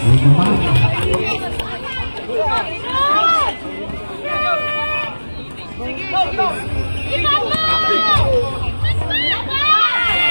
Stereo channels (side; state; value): both; inverted; correlation -1.00